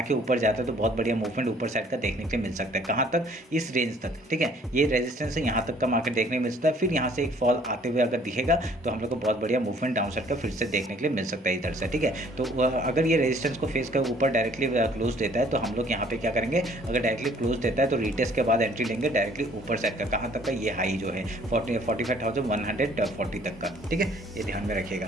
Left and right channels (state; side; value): normal; both; correlation 0.58